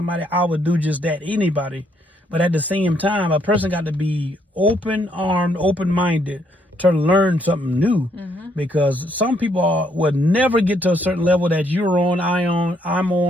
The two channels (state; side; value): normal; both; correlation 0.71